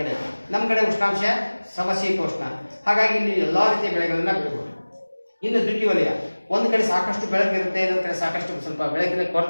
ಕಡೆ, ನಮ್ಮ ಕಡೆ ಉಷ್ಣಾಂಶ ಸಮಶೀತೋಷ್ಣ. ಹಾಗಾಗಿ ಇಲ್ಲಿ ಎಲ್ಲಾ ರೀತಿಯ ಬೆಳೆಗಳನ್ನ ಬೆಳಿಬಹುದು. ಇನ್ನು ದ್ವಿತೀಯವಲಯ, ಒಂದು ಕಡೆ ಸಾಕಷ್ಟು ಬೆಳಕು ಇರುತ್ತೆ, ಇನ್ನೊಂದು ಕಡೆ ಸಾಕಷ್ಟು ಸ್ವಲ್ಪ ಬೆಳಕಿನ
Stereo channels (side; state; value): both; inverted; correlation -1.00